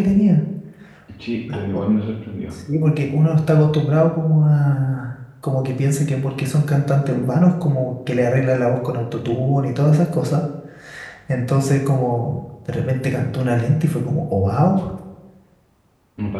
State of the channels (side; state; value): both; identical; correlation 1.00